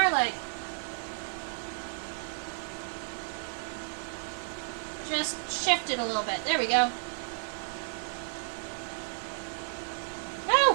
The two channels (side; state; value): left; silent; 56 dB below the other